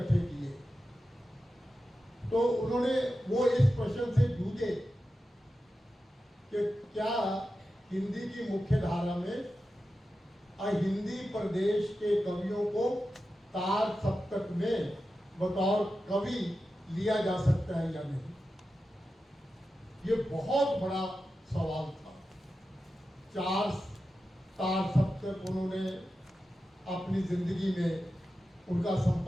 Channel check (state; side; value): normal; both; correlation 0.92